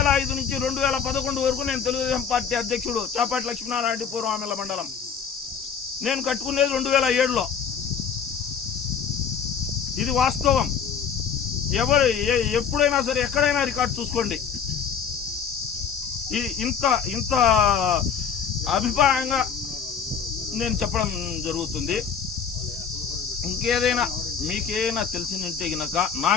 వరకు నేను తెలుగుదేశం పార్టీ అధ్యక్షుడు చాపాటి లక్ష్మీనారాయణ రెడ్డి పూర్వామిల మండలం. నేను కట్టుకునేది 2007లో. ఇది వాస్తవం. ఎప్పుడైనా సరే ఎక్కడైనా రికార్డు చూసుకోండి. ఇంత అభిప్రాయంగా నేను చెప్పడం జరుగుతుంది. ఇంకేదైనా మీకేమైనా తెలిసిందంటే గనక నా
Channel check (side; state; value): right; quieter; 6.9 dB